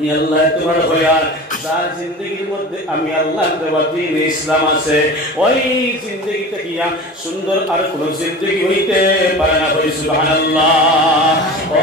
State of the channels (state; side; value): normal; both; correlation 0.34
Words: আল্লাহ তোমার হয়ার যার জিন্দগির মধ্যে আমি আল্লাহর দেওয়া দ্বীন ইসলাম আছে ওই জিন্দগিতে গিয়া সুন্দর আর কোন জিন্দগি হইতে পারে না। সুবহানাল্লাহ। ও